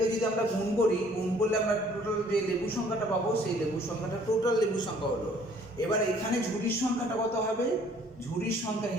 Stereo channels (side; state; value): both; normal; correlation 0.58